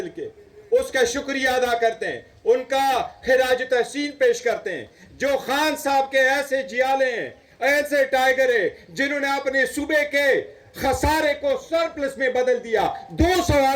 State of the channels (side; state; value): both; identical; correlation 1.00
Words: کے اس کا شکریہ ادا کرتے ہیں، ان کا خراج تحسین پیش کرتے ہیں، جو خان صاحب کے ایسے جیالے ہیں، ایسے ٹائیگر ہیں جنہوں نے اپنے صوبے کے خسارے کو سرپلس میں بدل دیا۔ 200